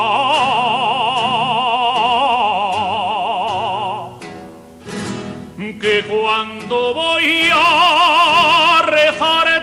cuando voy a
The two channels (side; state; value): both; identical; correlation 1.00